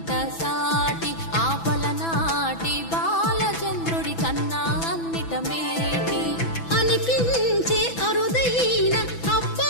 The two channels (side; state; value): right; late; 6.0 ms